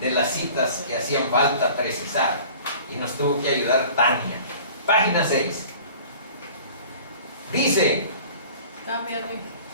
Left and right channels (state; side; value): inverted; both; correlation -0.45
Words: las citas que hacían falta precisar, y nos tuvo que ayudar Tania. Página 6. Dice: